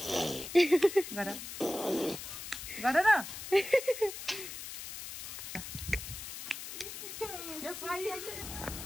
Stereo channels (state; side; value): noise; left; hiss, 9 dB below the sound